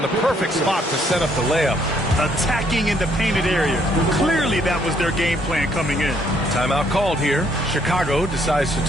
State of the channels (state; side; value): normal; both; correlation 0.68